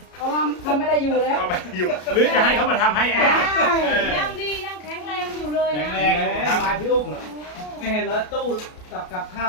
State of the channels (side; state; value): right; late; 33 ms